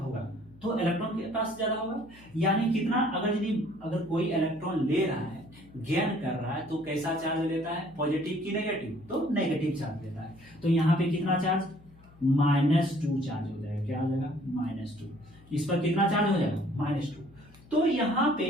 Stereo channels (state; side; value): noise; left; hum, 24 dB below the sound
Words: तो इलेक्ट्रॉन के पास ज्यादा होगा। यानी कितना, अगर कोई इलेक्ट्रॉन ले रहा है, गेन कर रहा है, तो कैसा चार्ज लेता है, पॉजिटिव की नेगेटिव, तो नेगेटिव चार्ज लेता है। तो यहाँ पे कितना चार्ज, -2 चार्ज हो जाएगा। क्या हो जाएगा, -2। इस पर कितना चार्ज हो जाएगा, -2। तो यहाँ पे